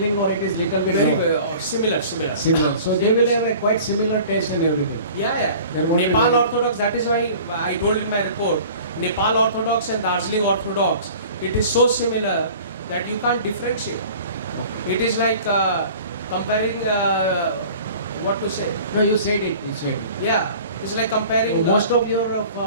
or it is little bit Very lower? similar. Similar. So they will have a quite similar taste and everything. Yeah. There won't be Nepal any- Orthodox, that is why I told in my report, Nepal Orthodox and Darjeeling Orthodox, it is so similar that you can't differentiate. It is like comparing, what to say? No, you said it. You said it. Yeah, it's like comparing. Most of your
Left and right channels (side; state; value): both; inverted; correlation -0.44